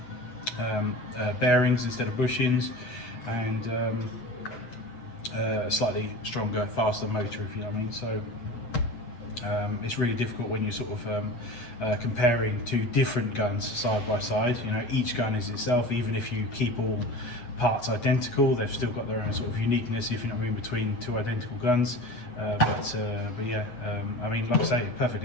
bearings instead of bushings, and a slightly stronger, faster motor, if you know what I mean. So it's really difficult when you're sort of comparing two different guns side by side. You know, each gun is itself, even if you keep all parts identical, they've still got their own sort of uniqueness, if you know what I mean, between two identical guns. But yeah, I mean, like I say,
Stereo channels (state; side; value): late; right; 8.1 ms